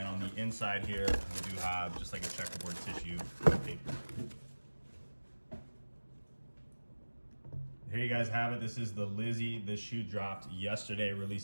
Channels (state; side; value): inverted; both; correlation -1.00